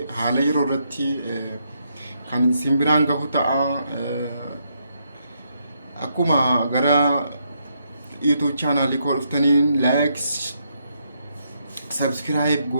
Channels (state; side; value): inverted; both; correlation -0.77